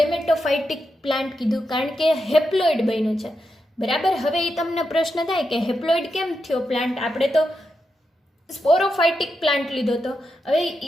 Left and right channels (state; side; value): normal; both; correlation 0.86